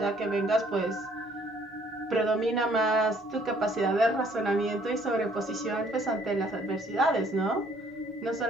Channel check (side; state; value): both; normal; correlation 0.62